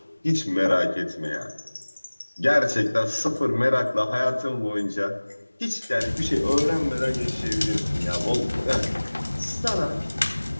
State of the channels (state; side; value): inverted; both; correlation -1.00